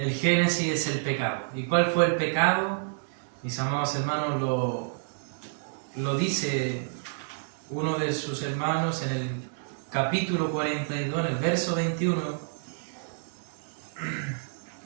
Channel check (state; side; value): silent; left; digital silence